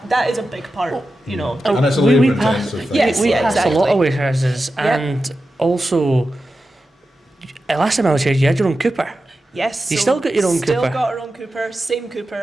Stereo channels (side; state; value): both; normal; correlation 0.92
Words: is a big part, And it's a labour intensive thing. We pass a lot of warehouses, and also last time I was here, you had your own cooper. Yes. You still got your own Still cooper. got our own cooper. Same